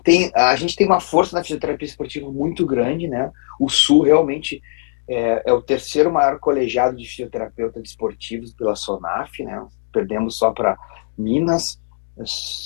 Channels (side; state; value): right; silent; digital silence